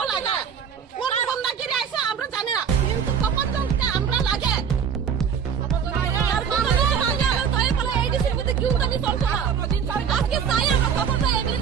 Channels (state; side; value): quieter; left; 7.4 dB